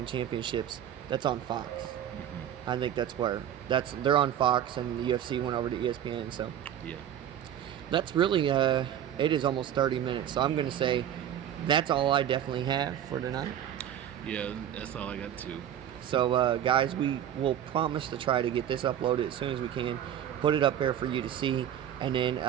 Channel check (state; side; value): quieter; left; 10.3 dB